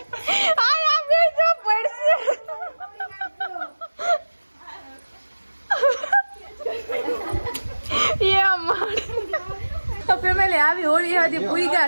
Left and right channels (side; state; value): both; inverted; correlation -1.00